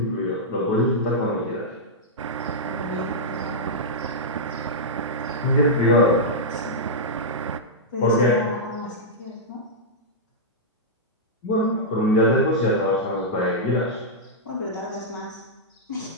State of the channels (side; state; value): both; normal; correlation -0.09